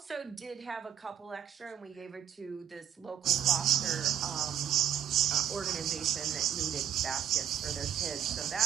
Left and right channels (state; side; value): quieter; left; 9.6 dB